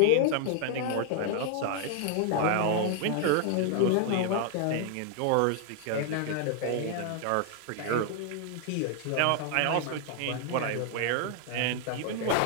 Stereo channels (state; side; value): different; both; correlation 0.00